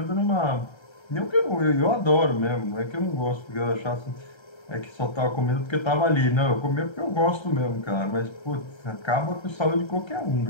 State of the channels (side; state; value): right; late; 1.3 ms